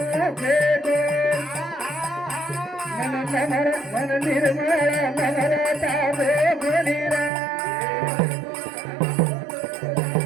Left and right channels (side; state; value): left; drops out; at 7.3 s